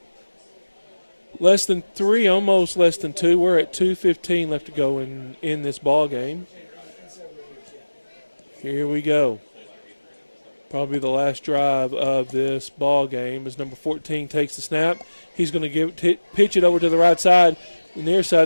Less than 3, almost less than 2. We're at 2:15 left to go in this ball game. Here we go. Probably the last drive of this ball game as number 14 takes the snap. He's going to pitch it over to the right side, the near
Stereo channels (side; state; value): both; inverted; correlation -1.00